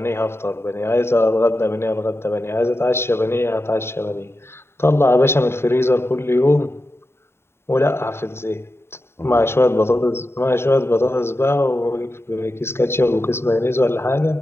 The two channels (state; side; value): late; right; 0.12 ms